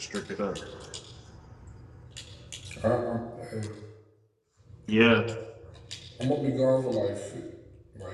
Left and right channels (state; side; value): identical; both; correlation 1.00